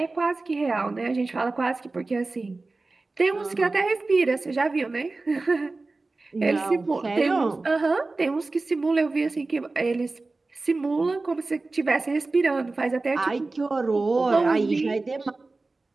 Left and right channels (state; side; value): quieter; left; 3.4 dB